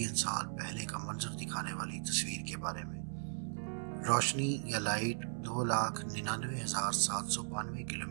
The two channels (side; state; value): left; silent; digital silence